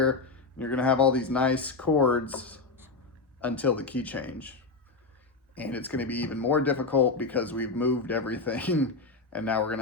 and you're going to have all these nice chords until the key change. And it's going to be even more difficult because we've moved everything and now we're going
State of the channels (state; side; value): quieter; right; 3.9 dB